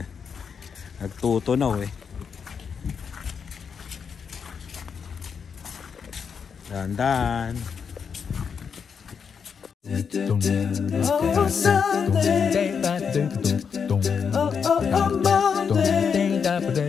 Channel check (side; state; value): right; quieter; 6.5 dB